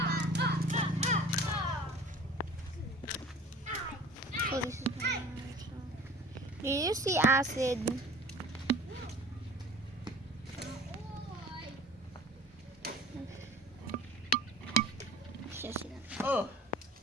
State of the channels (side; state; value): both; normal; correlation 0.44